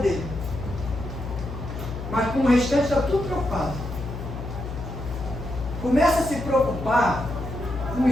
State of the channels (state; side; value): noise; left; hum, 8 dB below the sound